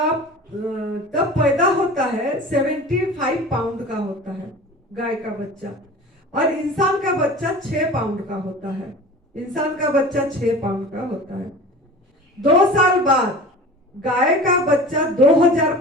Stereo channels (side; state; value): both; normal; correlation 0.37